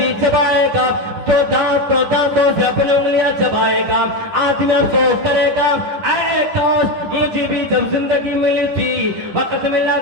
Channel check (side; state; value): left; late; 10 ms